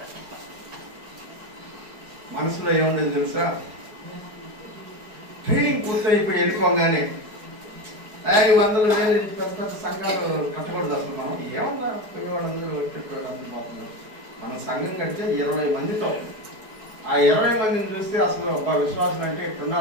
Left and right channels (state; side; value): late; left; 4.7 ms